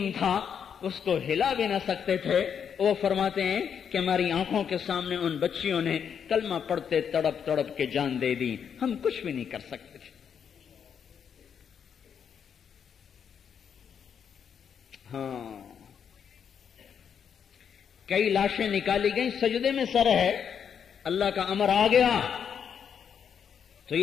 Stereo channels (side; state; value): right; quieter; 7.6 dB